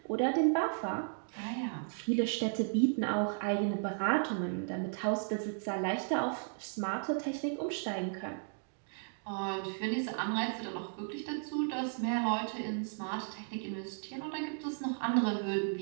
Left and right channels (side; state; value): left; silent; digital silence